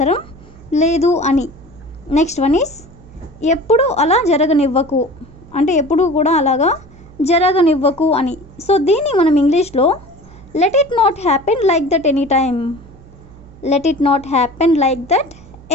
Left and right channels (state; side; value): noise; right; hum, 22 dB below the sound